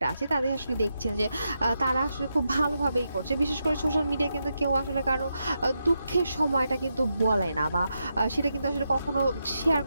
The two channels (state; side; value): inverted; both; correlation -0.85